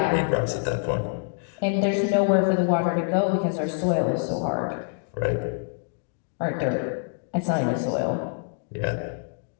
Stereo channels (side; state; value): right; silent; digital silence